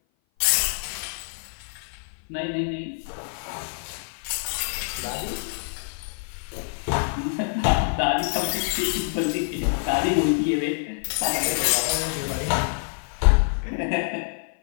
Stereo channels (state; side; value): silent; right; 57 dB below the other